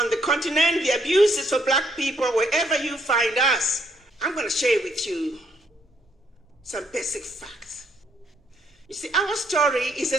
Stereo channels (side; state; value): both; normal; correlation 0.71